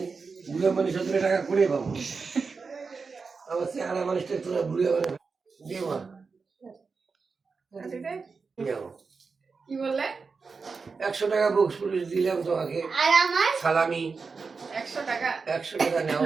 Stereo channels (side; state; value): left; quieter; 4.8 dB